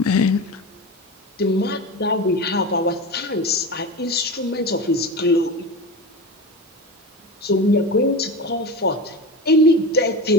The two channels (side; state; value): both; normal; correlation 0.25